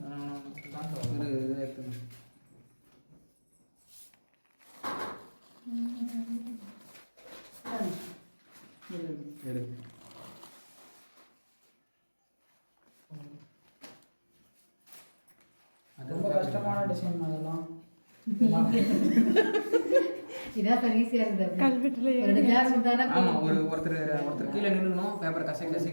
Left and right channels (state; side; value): inverted; both; correlation -1.00